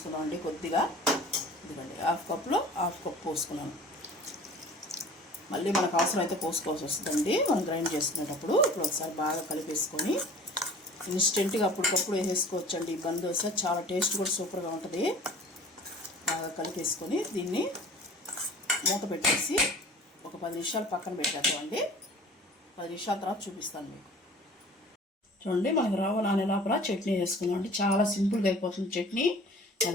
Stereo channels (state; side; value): normal; both; correlation 0.45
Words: కొద్దిగా. ఇదిగోండి, హాఫ్ కప్లో హాఫ్ కప్ పోసుకున్నాను. మళ్ళీ మనకు అవసరం అయితే పోసుకోవాల్సి వస్తుందండి మనం గ్రైండ్ చేసుకునేటప్పుడు. ఇప్పుడు ఒకసారి బాగా కలిపేసుకొని ఇన్స్టెంట్గా అప్పటికప్పుడు వేసేసుకోవచ్చండి. ఈ బంద్ దోశ చాలా టేస్ట్ కూడా సూపర్గా ఉంటుంది. బాగా కలిపేసుకొని దీన్ని మూత పెట్టేసి ఒక 10 నిమిషాలు పక్కన పెట్టేద్దామండి. 10 నిమిషాల తర్వాత చూపిస్తాను మీకు. చూడండి, మనకు రవ్వ నానే లోపల చట్నీ వేసుకున్నామండి. చాలా సింపుల్గా అయిపోతుంది చట్నీ.